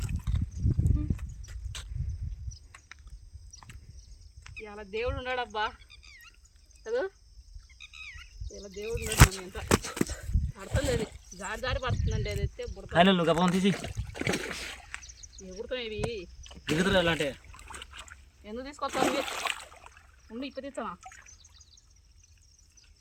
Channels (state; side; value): identical; both; correlation 1.00